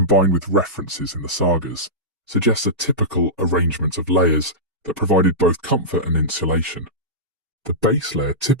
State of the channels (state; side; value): normal; both; correlation -0.15